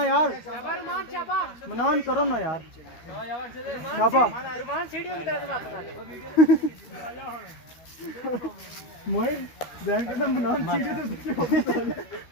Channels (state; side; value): late; right; 12 ms